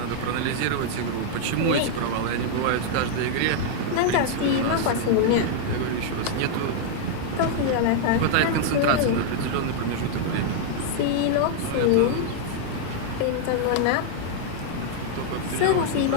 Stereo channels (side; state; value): both; different; correlation -0.01